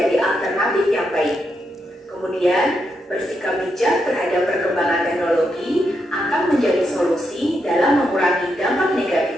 alternatif yang baik. Kemudian, bersikap bijak terhadap perkembangan teknologi akan menjadi solusi dalam mengurangi dampak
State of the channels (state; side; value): normal; both; correlation 0.82